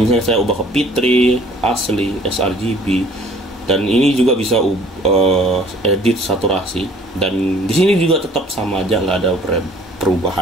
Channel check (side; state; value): both; normal; correlation 0.55